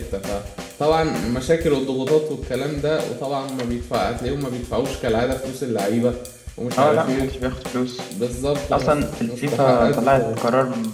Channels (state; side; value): identical; both; correlation 1.00